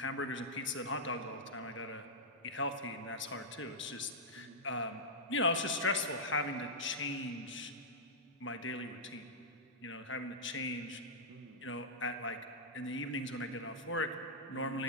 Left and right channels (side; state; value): both; normal; correlation -0.09